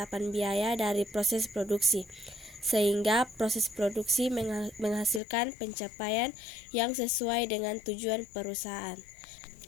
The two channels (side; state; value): right; drops out; at 5.2 s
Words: biaya dari proses produksi, sehingga proses produksi menghasilkan pencapaian yang sesuai dengan tujuan perusahaan.